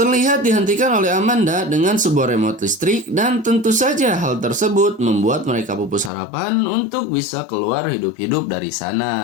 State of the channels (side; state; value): right; drops out; at 6.1 s